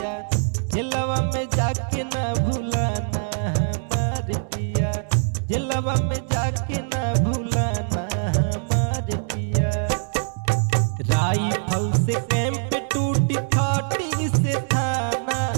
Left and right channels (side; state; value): left; silent; digital silence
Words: झिलवा में जाके ना भूलाना हमार पिया, झिलवा में जाके ना भूलाना हमार पिया। राइफल से कैंप टूटी थाटी से थाना,